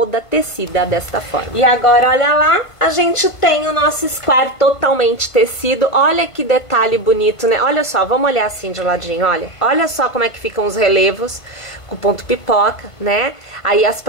tecida desta forma. E agora, olha lá, a gente tem o nosso square totalmente tecido. Olha que detalhe bonito, né? Olha só, vamos olhar assim de ladinho, olha. Olha só como é que ficam os relevos com o ponto pipoca, né? Aí as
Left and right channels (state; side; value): late; right; 1.5 ms